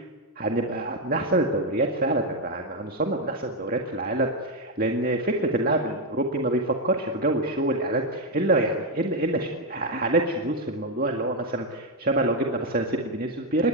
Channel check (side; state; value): both; normal; correlation 0.04